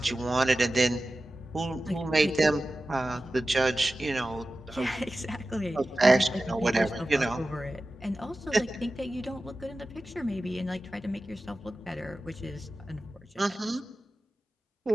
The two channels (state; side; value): normal; both; correlation 0.94